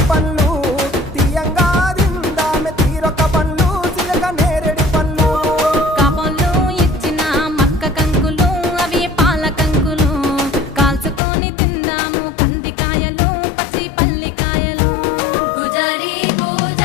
పండ్లు తీయంగా దిందామె తీరొక్క పండ్లు చిలక నేరేడు పండ్లు కాపోళ్ళు ఇచ్చిన మక్క కంకులు అవి పాల కంకులు కాల్చుకొని తిందాము కందికాయలు పచ్చి పల్లికాయలు గుజారి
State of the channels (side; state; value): right; drops out; at 11.2 s